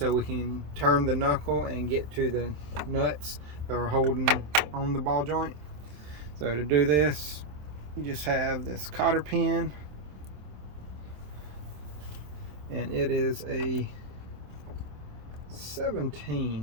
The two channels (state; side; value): late; left; 27 ms